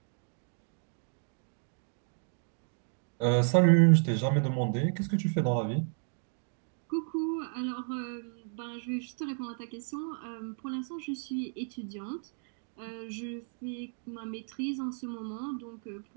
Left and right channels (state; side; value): silent; left; 56 dB below the other